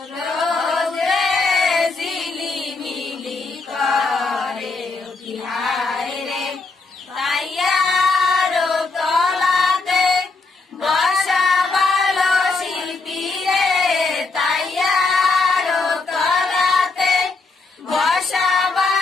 রোজ রে ঝিলিমিলি করে কি হায় রে তাইয়ার তলাতে বসা ভালো শিল্পী রে তাইয়ার তলাতে বসা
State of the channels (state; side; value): quieter; right; 3.9 dB